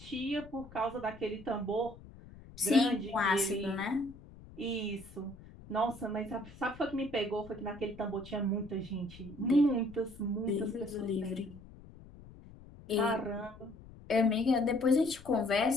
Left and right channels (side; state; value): left; noise; rumble, 19 dB below the sound